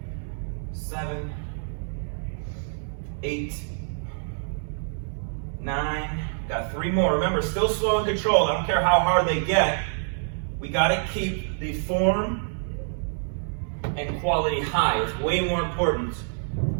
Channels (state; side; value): silent; left; 60 dB below the other